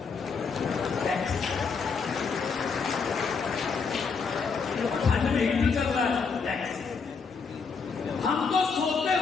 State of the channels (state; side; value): quieter; right; 5.3 dB